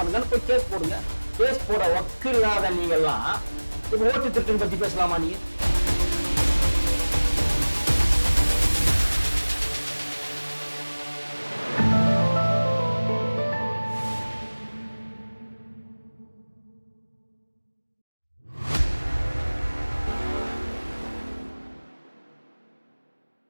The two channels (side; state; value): both; inverted; correlation -1.00